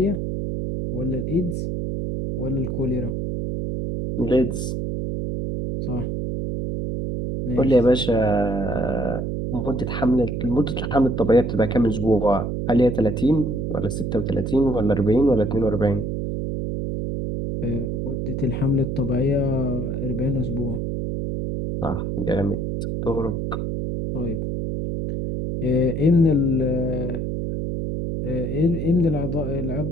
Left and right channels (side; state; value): right; noise; hum, 2 dB below the sound